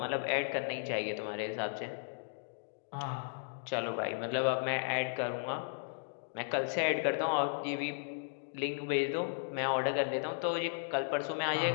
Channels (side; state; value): right; silent; digital silence